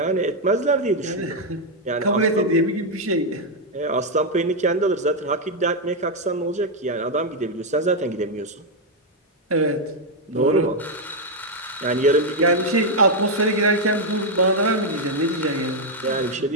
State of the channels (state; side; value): normal; both; correlation 0.01